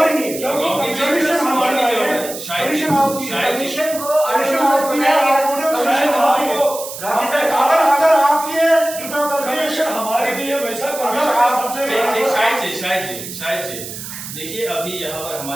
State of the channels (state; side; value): noise; right; hiss, 10 dB below the sound